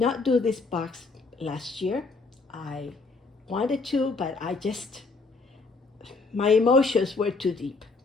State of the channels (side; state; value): right; quieter; 3.9 dB